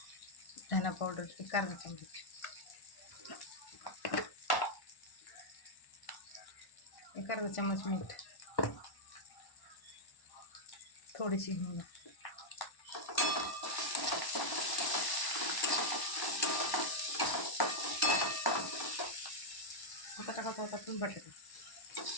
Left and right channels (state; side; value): late; right; 1.1 ms